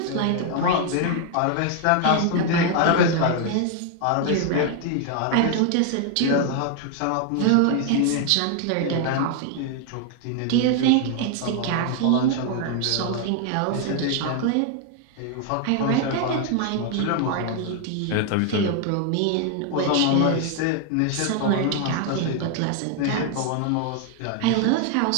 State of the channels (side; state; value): both; different; correlation 0.00